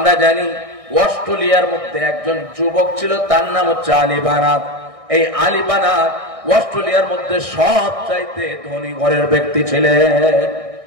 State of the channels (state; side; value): late; left; 1.6 ms